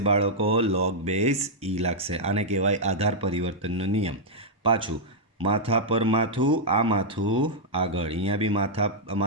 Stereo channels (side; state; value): both; normal; correlation -0.05